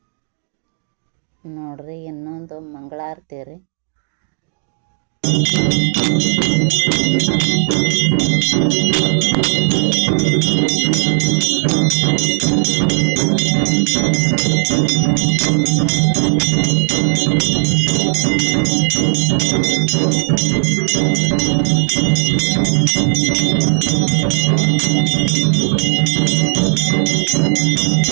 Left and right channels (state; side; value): silent; left; digital silence